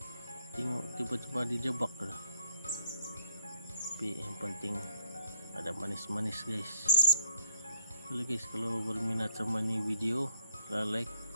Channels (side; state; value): both; inverted; correlation -0.70